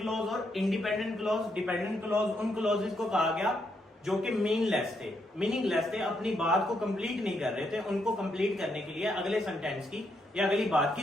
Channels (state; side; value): normal; both; correlation 0.78